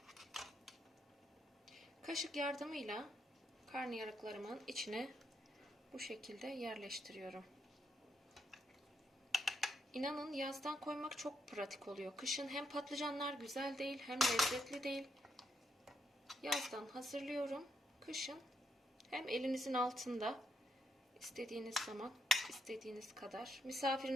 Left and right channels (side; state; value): both; normal; correlation 0.78